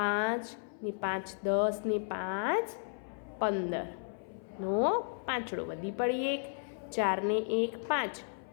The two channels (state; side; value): silent; right; 55 dB below the other